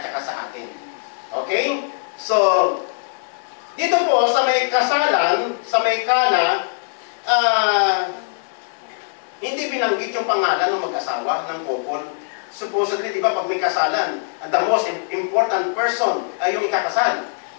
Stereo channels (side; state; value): right; silent; digital silence